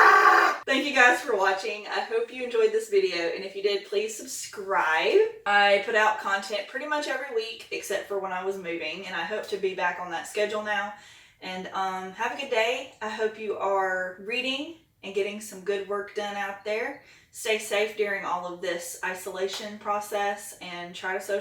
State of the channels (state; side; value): identical; both; correlation 1.00